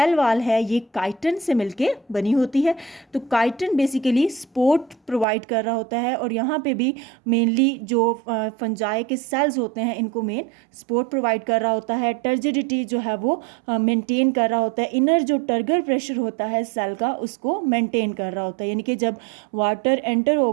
वॉल है ये काइटन से मिलके बनी होती है। तो काइटन बेसिकली सपोर्ट प्रोवाइड कर रहा होता है, और यहाँ पे भी मेनली जो फंजाई के सेल्स होते हैं इनको मेन सपोर्ट प्रोवाइड कर रहा होता है। टर्जिडिटी जो है वो मेंटेन कर रहा होता है। इनर जो टर्गर प्रेशर होता है सेल का उसको मेंटेन कर रहा होता है, यानी कि जब वाटर एंटर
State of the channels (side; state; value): left; drops out; at 5.2 s